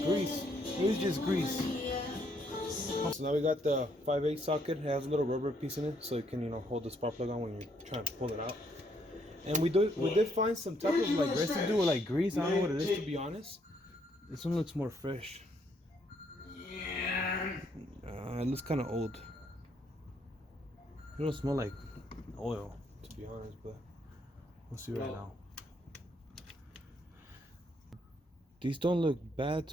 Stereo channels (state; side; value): normal; both; correlation 0.71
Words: grease. This is just grease. So now we got the 5/8 socket. It has a little rubber piece in it, so it can, you know, hold the spark plug on when you're trying to pull it out. And we did find some type of like residue or like grease. I don't know what it is, to be honest. This one looks more fresh. It looks kind of old. It don't smell like oil, to be honest, but we'll see right now. These don't look bad,